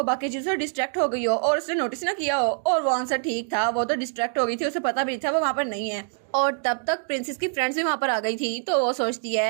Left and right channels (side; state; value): left; silent; 59 dB below the other